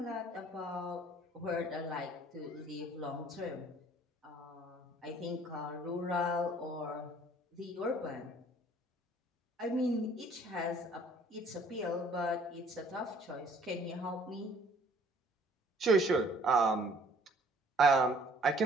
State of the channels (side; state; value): both; normal; correlation 0.57